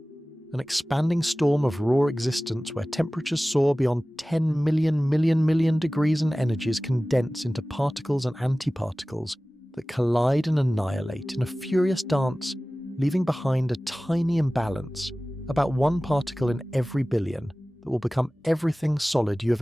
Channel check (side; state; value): both; normal; correlation 0.97